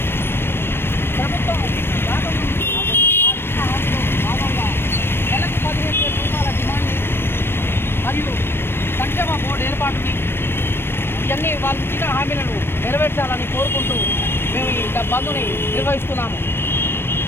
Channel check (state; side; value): late; right; 0.11 ms